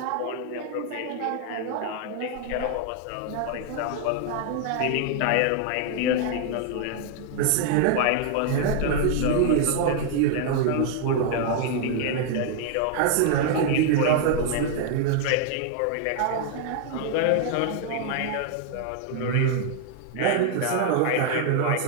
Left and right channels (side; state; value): both; different; correlation 0.00